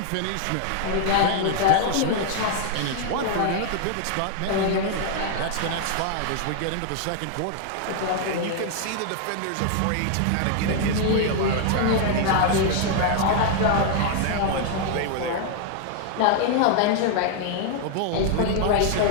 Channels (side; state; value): both; different; correlation 0.00